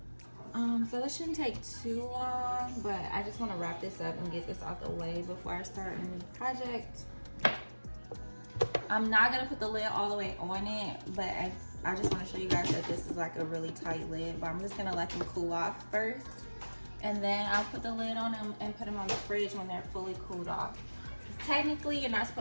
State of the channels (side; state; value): both; inverted; correlation -1.00